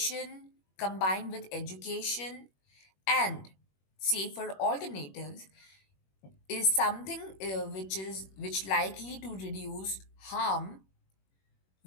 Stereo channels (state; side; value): late; right; 21 ms